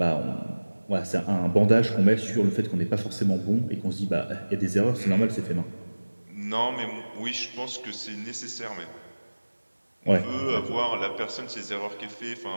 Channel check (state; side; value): inverted; both; correlation -1.00